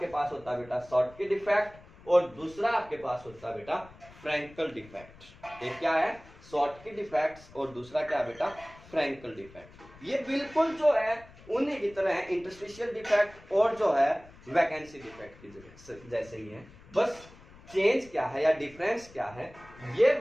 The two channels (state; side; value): noise; left; rumble, 22 dB below the sound